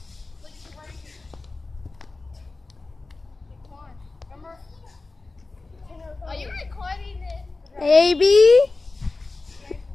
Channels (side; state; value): right; quieter; 3.5 dB